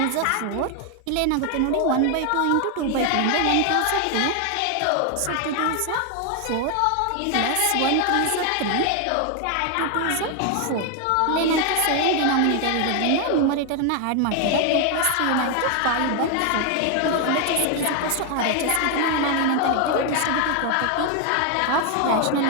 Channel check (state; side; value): different; both; correlation 0.00